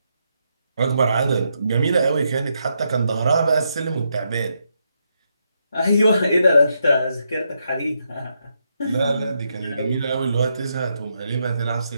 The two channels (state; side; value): inverted; both; correlation -0.80